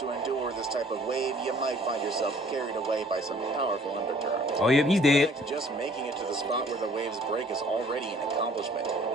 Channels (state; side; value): normal; both; correlation 0.56